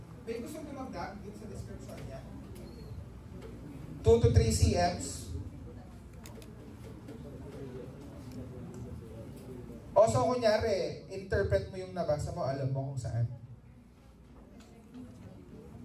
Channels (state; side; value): identical; both; correlation 1.00